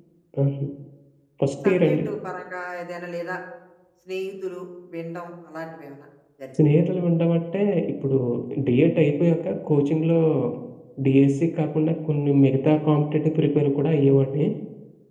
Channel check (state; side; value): identical; both; correlation 1.00